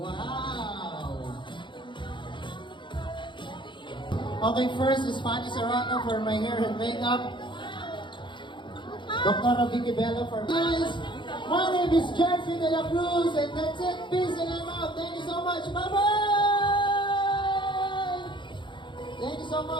Okay, first is Fanny Serrano for my hair and makeup. Dr. Vicky Bello for guys. My name is Jeffrey De La Cruz, and that's it. Peace and I'm out. Thank you so much. Bye bye. Thank you so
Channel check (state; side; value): late; right; 0.23 ms